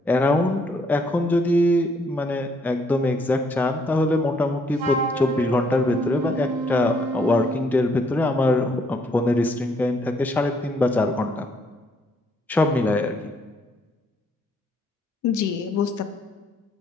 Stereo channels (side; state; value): both; normal; correlation 0.69